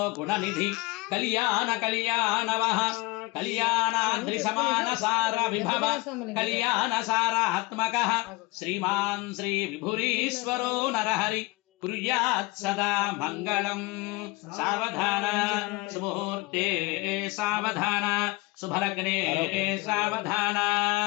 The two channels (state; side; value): quieter; right; 22.7 dB